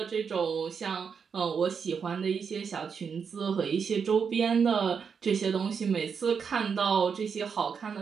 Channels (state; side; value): quieter; left; 6.3 dB